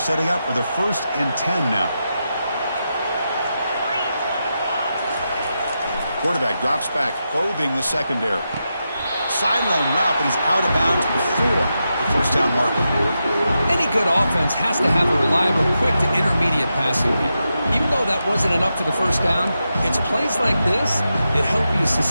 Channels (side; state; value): both; inverted; correlation -0.88